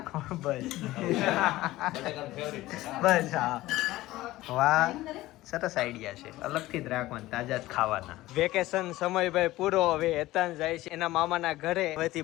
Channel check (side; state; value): right; quieter; 17.1 dB